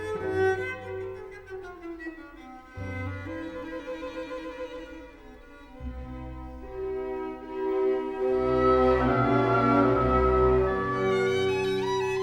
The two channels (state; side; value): identical; both; correlation 1.00